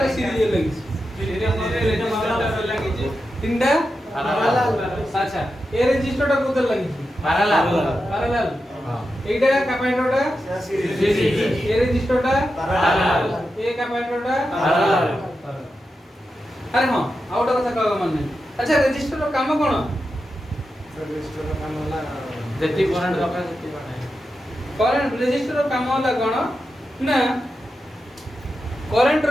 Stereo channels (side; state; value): both; normal; correlation 0.89